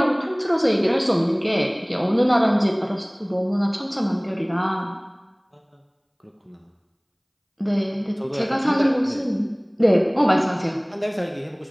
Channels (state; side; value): identical; both; correlation 1.00